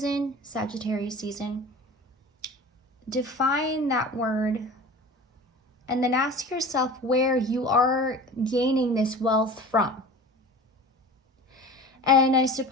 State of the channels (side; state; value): both; normal; correlation 0.37